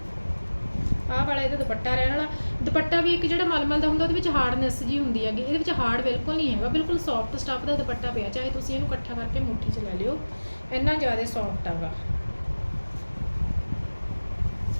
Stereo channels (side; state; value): both; inverted; correlation -1.00